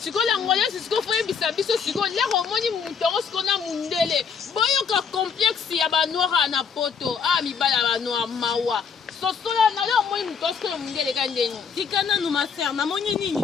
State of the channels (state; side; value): quieter; right; 6.3 dB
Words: Siko l'angolaise siko foye bisabiso siko lero moni mutango siko na mundele. Boyoka complexe ya ba noir na poto. Ah mibala ba noir mawa. Sosola na leo moni mutosko na mundele kandeni. Tikana no ma sœur, na moni nini?